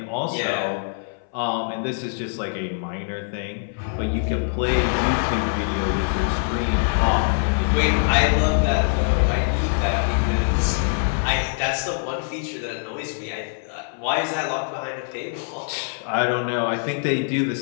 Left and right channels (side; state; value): right; silent; 63 dB below the other